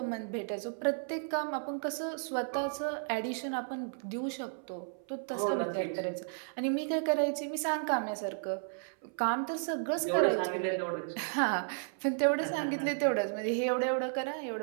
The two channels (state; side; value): silent; left; 55 dB below the other